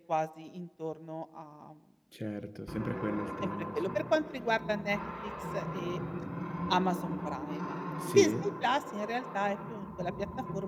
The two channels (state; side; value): identical; both; correlation 1.00